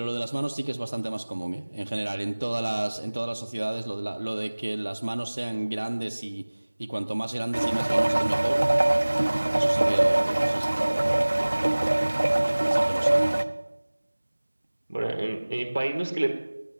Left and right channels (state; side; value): inverted; both; correlation -1.00